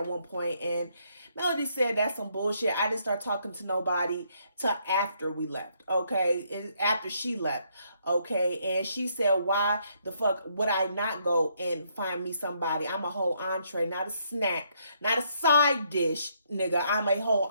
one point, and Melody said that's some bullshit. I didn't start talking to nobody till after we left, okay? After she left, okay? And she said, why the fuck would I not go and find me somebody? I'm a whole entree, not a snack, not a side dish, nigga. I'm a whole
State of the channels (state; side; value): inverted; both; correlation -0.72